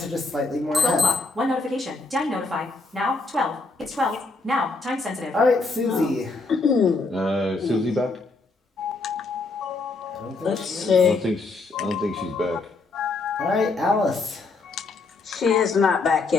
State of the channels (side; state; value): right; quieter; 3.6 dB